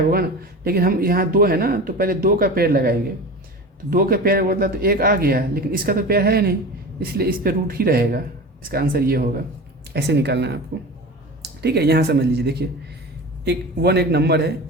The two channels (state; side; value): normal; both; correlation 0.32